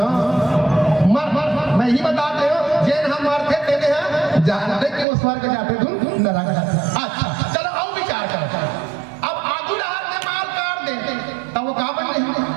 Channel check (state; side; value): drops out; left; at 5.1 s